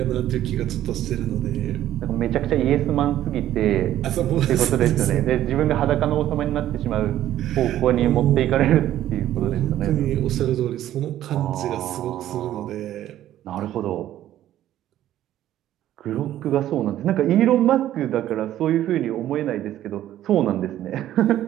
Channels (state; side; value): quieter; left; 12.7 dB